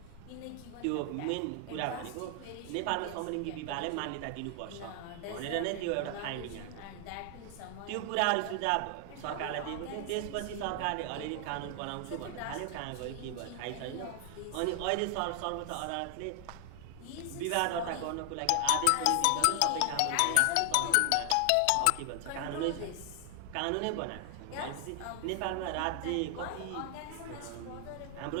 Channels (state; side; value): different; both; correlation 0.00